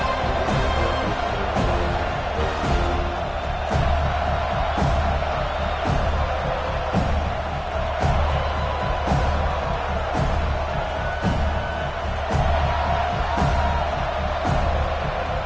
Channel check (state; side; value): identical; both; correlation 1.00